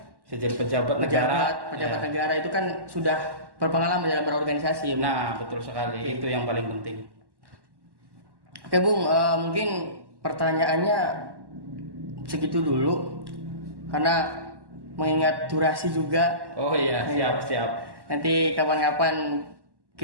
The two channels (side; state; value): left; late; 1.1 ms